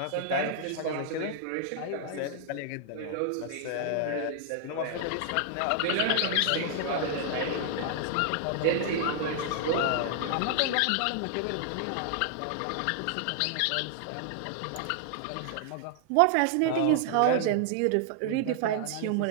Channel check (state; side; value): different; both; correlation -0.01